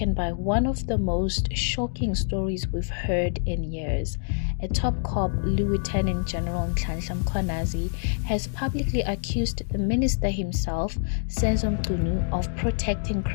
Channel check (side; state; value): right; silent; 61 dB below the other